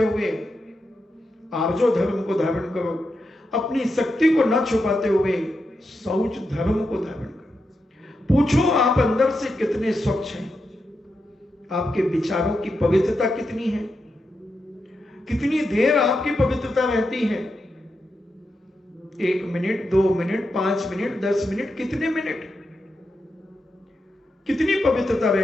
हुए आर्जो धर्म को धारण करो, अपनी शक्ति को न छुपाते हुए शौच धर्म को धारण करो। पूछो आप अंदर से कितने स्वच्छ हैं, आपके विचारों की पवित्रता कितनी है, कितनी देर आपकी पवित्रता रहती है, 1 मिनट, 2 मिनट, 5 मिनट, 10 मिनट, कितने मिनट, कितनी पवित्रता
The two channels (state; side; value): normal; both; correlation 0.86